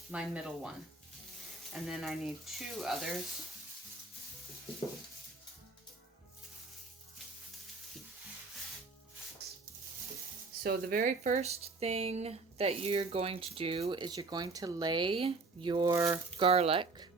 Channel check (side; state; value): left; quieter; 3.7 dB